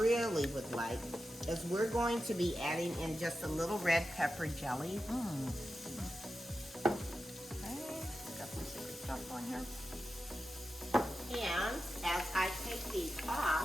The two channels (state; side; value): normal; both; correlation 0.91